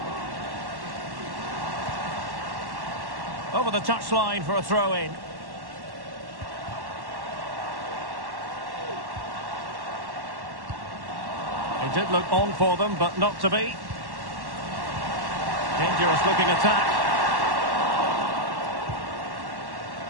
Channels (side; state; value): left; late; 1.1 ms